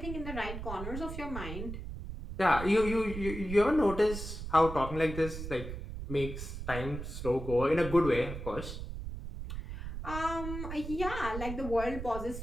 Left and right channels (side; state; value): right; noise; rumble, 7 dB below the sound